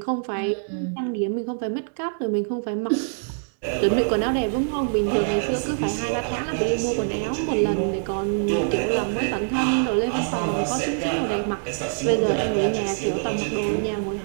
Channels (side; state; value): left; silent; digital silence